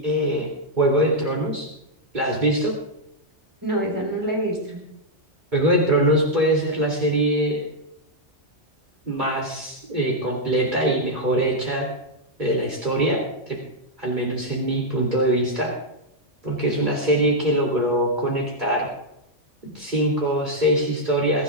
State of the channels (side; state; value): both; normal; correlation -0.04